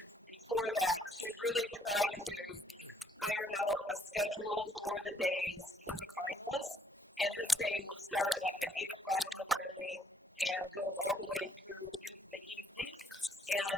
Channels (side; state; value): both; normal; correlation 0.68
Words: before that to really try to iron out a schedule for the days for the finalists. And this day will start like at 8 o'clock in the morning and go all the way through into the evening.